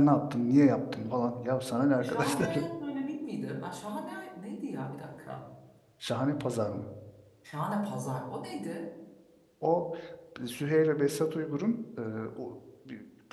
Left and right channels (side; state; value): both; identical; correlation 1.00